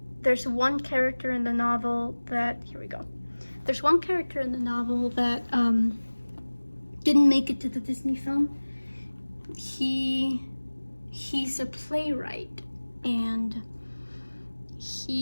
There's one character in the novel that, here we go. There's one character in the novel that didn't make it to the Disney film. He's a playwright, and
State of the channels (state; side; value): inverted; both; correlation -1.00